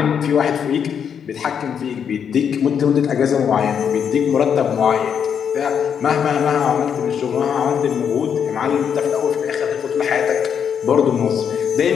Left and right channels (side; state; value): right; quieter; 7.7 dB